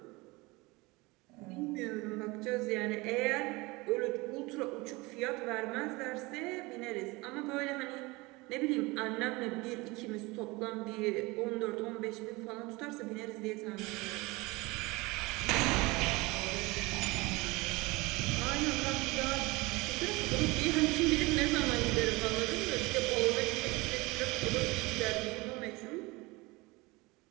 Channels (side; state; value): left; quieter; 23.4 dB